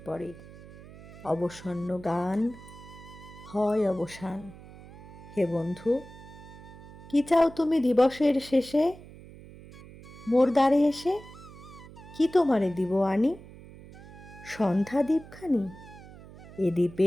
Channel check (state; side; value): noise; right; hum, 18 dB below the sound